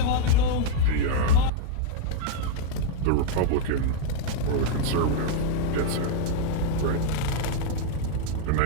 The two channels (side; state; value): both; different; correlation -0.01